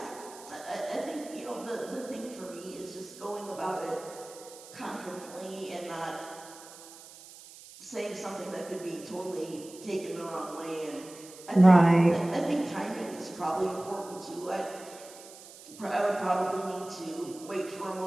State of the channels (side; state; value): right; noise; hiss, 18 dB below the sound